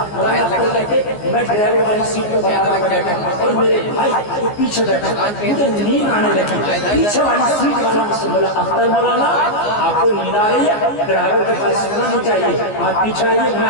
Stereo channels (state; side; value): late; right; 14 ms